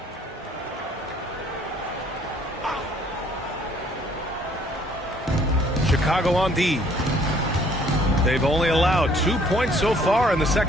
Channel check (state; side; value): normal; both; correlation 0.61